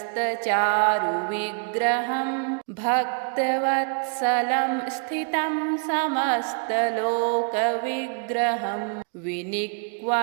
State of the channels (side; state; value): left; quieter; 39.5 dB